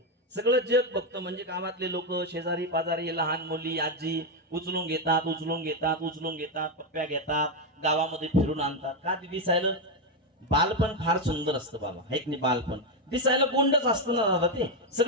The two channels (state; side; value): normal; both; correlation 0.06